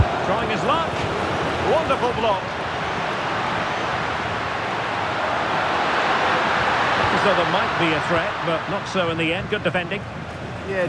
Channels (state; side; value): identical; both; correlation 1.00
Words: Trying his luck. Wonderful block. So there might be a threat, but not so in the end. Good defending. Yeah,